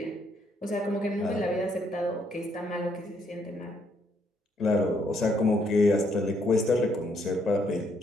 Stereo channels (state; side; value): normal; both; correlation 0.72